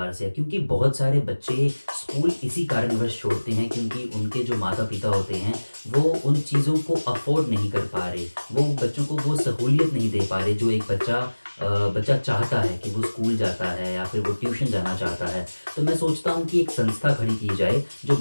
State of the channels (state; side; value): inverted; both; correlation -1.00